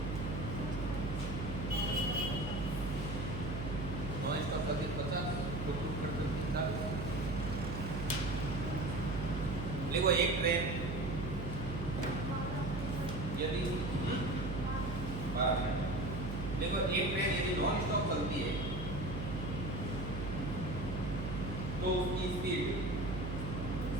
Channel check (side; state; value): right; noise; hum, 4 dB below the sound